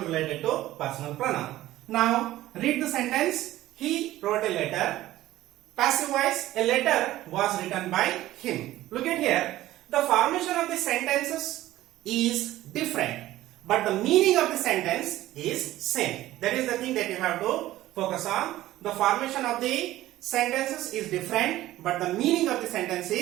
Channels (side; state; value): left; quieter; 15.3 dB